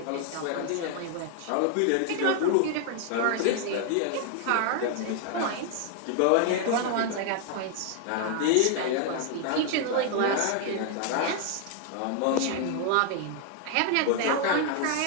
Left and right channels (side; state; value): both; different; correlation 0.00